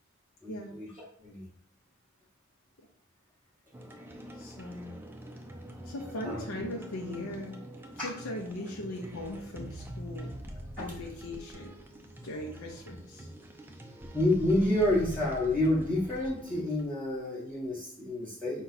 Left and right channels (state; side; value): normal; both; correlation 0.65